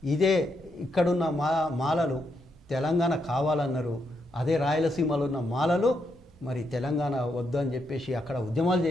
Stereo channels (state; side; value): normal; both; correlation 0.80